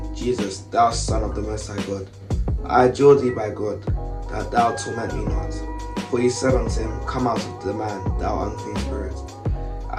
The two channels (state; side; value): identical; both; correlation 1.00